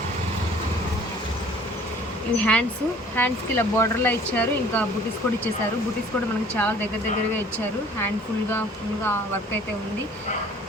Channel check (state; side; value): normal; both; correlation 0.52